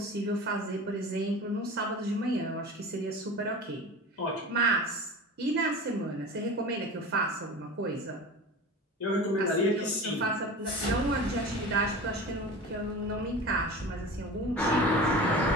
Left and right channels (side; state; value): both; normal; correlation 0.34